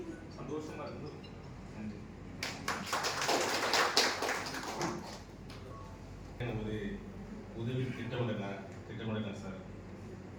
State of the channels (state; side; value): identical; both; correlation 1.00